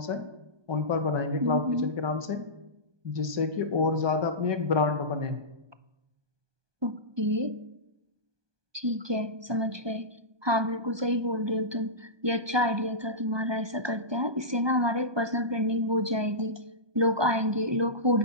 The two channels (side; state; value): left; late; 1.2 ms